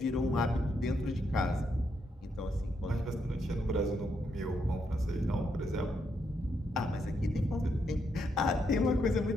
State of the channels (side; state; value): both; normal; correlation 0.79